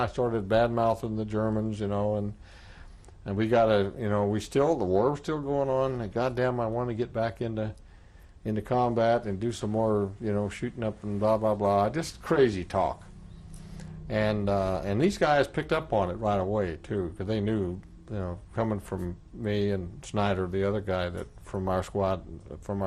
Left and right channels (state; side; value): identical; both; correlation 1.00